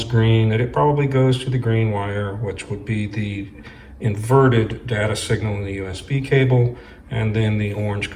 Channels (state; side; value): identical; both; correlation 1.00